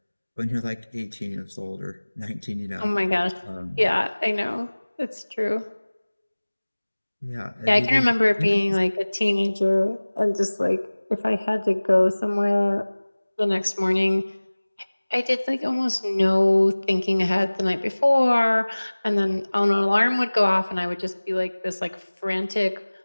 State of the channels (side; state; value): both; inverted; correlation -1.00